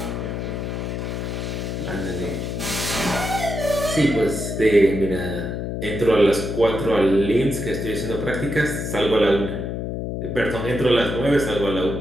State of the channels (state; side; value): noise; left; hum, 4 dB below the sound